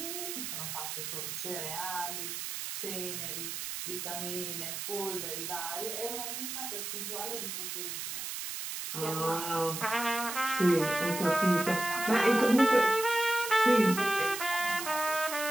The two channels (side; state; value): right; noise; hiss, 5 dB below the sound